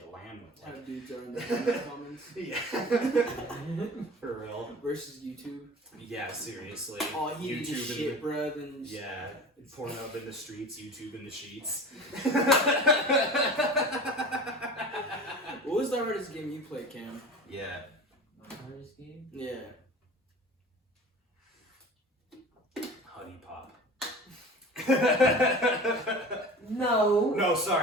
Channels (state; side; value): normal; both; correlation 0.37